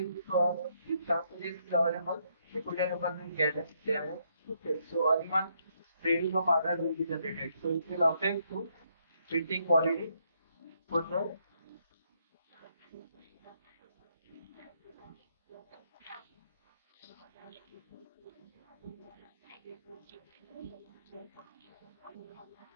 sample is available, recorder will get damage. Okay, so only one reading of order will be generated. So it will affect to printing quality for the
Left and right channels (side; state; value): both; inverted; correlation -0.74